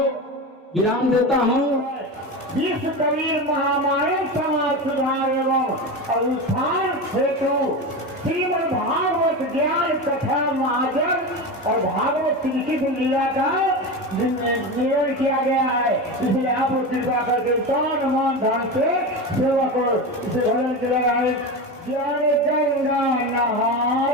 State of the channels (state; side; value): normal; both; correlation 0.22